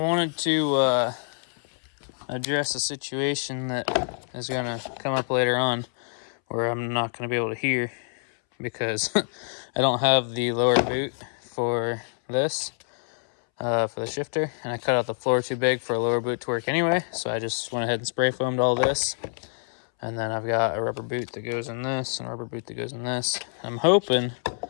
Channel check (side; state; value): right; silent; 61 dB below the other